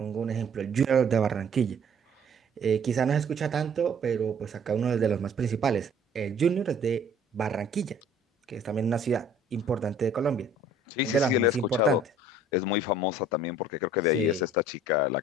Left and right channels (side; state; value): both; normal; correlation 0.54